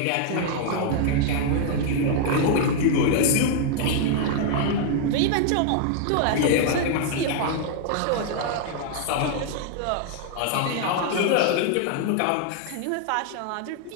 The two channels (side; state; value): both; different; correlation 0.00